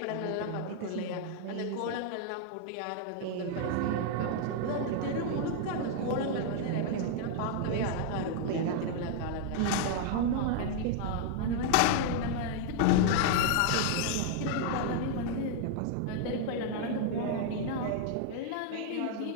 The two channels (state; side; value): different; both; correlation 0.00